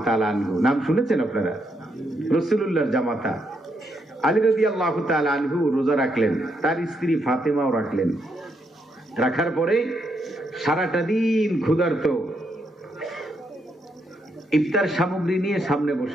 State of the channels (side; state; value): both; normal; correlation 0.78